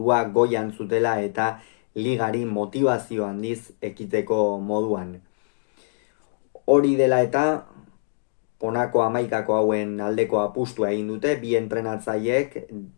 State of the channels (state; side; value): silent; right; digital silence